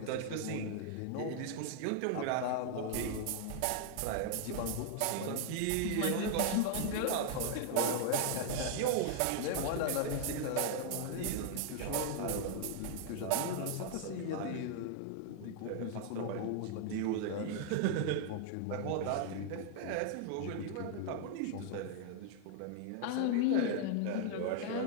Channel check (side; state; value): both; different; correlation -0.01